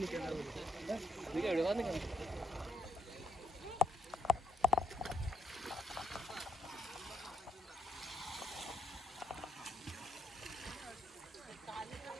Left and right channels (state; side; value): normal; both; correlation 0.78